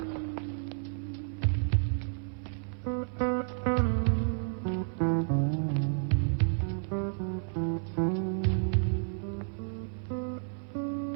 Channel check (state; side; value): silent; left; digital silence